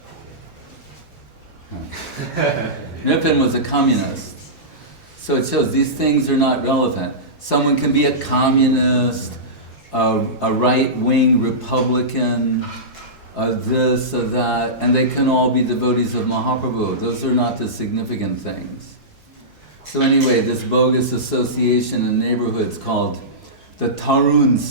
Nripan was a communist. So it shows these things are not relevant. Someone can be a communist, a right-wing Republican, this or that, and they can all be devotees of Mahaprabhu. Those are not the significant things. So anyway, this bogus association in neighborhoods called the Tarun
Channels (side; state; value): both; normal; correlation -0.18